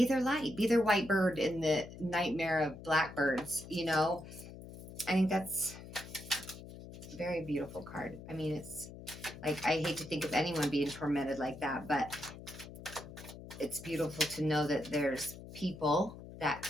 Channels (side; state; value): left; noise; hum, 14 dB below the sound